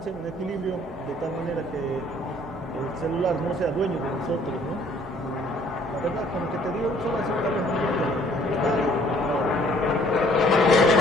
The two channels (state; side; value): normal; both; correlation 0.59